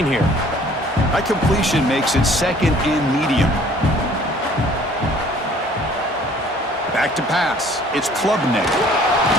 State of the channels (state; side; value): normal; both; correlation 0.54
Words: here. That completion makes it second and medium. Back to pass. It's Klubnik.